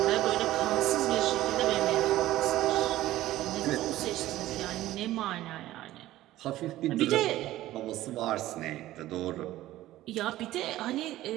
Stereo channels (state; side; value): quieter; left; 15.3 dB